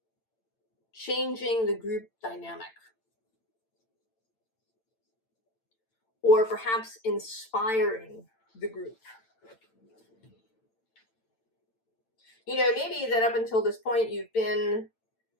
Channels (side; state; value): right; late; 8.9 ms